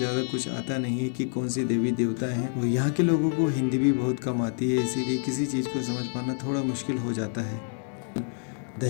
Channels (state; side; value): silent; right; 60 dB below the other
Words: कुछ आता नहीं है कि कौन सी देवी देवता हैं। और यहाँ के लोगों को हिंदी भी बहुत कम आती है, इसीलिए किसी चीज़ को समझ पाना थोड़ा मुश्किल हो जाता है।